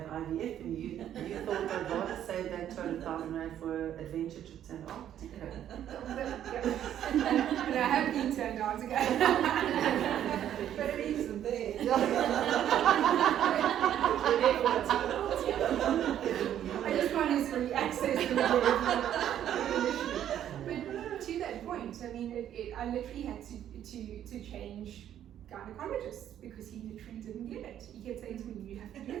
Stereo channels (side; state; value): left; quieter; 10.7 dB